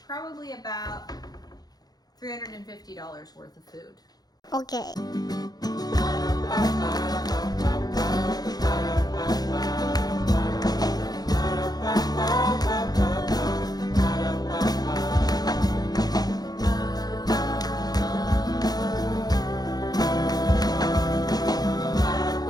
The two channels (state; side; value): late; right; 0.19 ms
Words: probably about $350 worth of food. Okay.